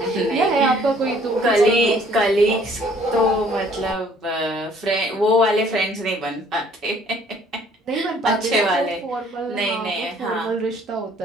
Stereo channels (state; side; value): normal; both; correlation 0.59